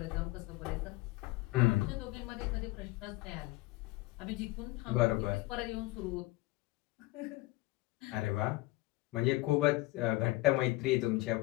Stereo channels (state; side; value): quieter; right; 19.9 dB